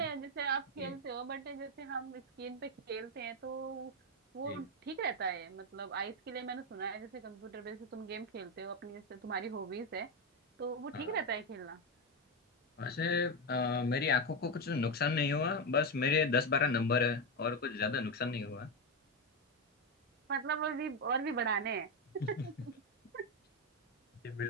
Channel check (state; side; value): normal; both; correlation 0.09